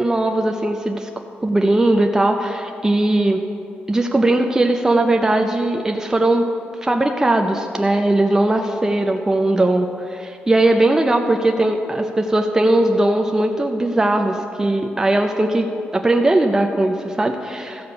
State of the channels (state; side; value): normal; both; correlation 0.92